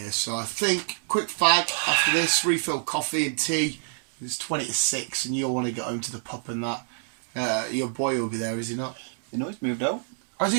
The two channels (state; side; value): silent; left; digital silence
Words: so I think quick fag after this, refill coffee and tea. It's 20 to 6, and you'll want to get home to the pub and that. Your boy will be there, is he not? You know, he's moved out. Oh, is he